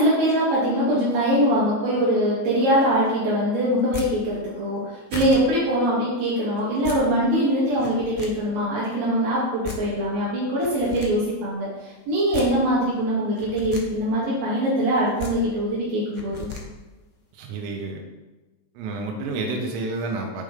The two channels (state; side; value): late; left; 19 ms